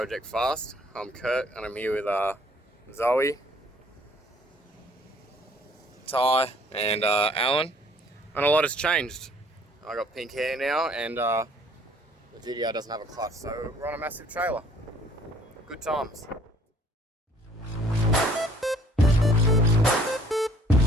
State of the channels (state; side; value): normal; both; correlation 0.59